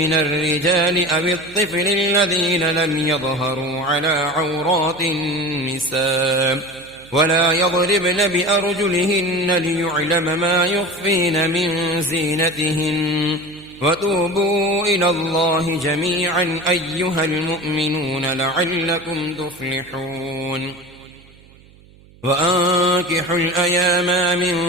الرجال أو الطفل الذين لم يظهروا على عورات النساء ولا يضربن بأرجلهن ليعلم ما يخفين من زينتهن وتوبوا إلى الله جميعا أيها المؤمنون لعلكم تفلحون وأنكحوا الأيام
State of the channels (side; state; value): right; noise; hum, 26 dB below the sound